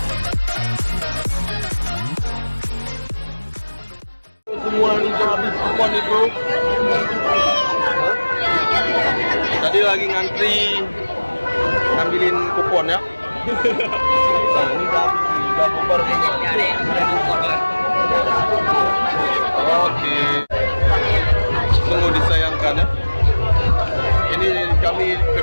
Semua ini habis kupon itu. Tadi lagi ngantri ngambilin kupon ya. Nah ini udah bubar semua. Oke. Sungguh disayangkan ya. Ini kami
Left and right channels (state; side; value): inverted; both; correlation -1.00